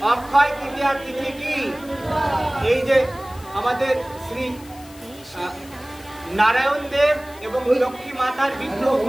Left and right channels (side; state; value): left; noise; hiss, 22 dB below the sound